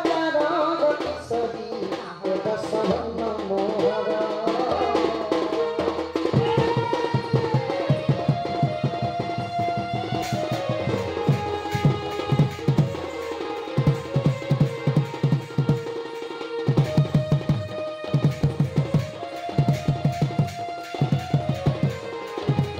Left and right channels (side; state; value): both; identical; correlation 1.00